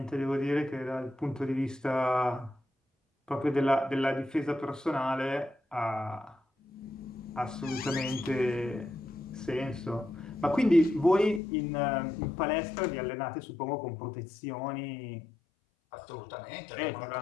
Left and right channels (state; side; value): drops out; right; at 11.4 s